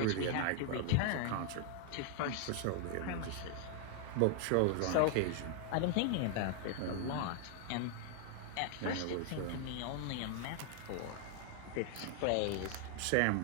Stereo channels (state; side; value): different; both; correlation 0.00